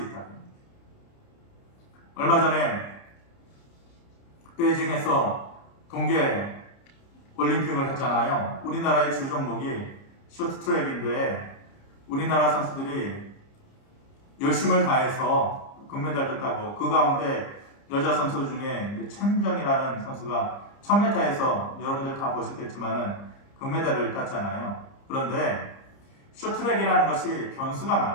있다. 얼마 전에 베이징에서 동계 올림픽을 했잖아요. 우리나라의 주 종목이 쇼트트랙인데 우리나라 선수들이 열심을 다해서 금메달을 따고 그 가운데 여자 선수 중에 최민정이라는 선수가 1000m에서 여러분들 다 보셨겠지만은 금메달을 땄잖아요. 그런데 쇼트트랙이라는 것이 변수가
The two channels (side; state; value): right; late; 30 ms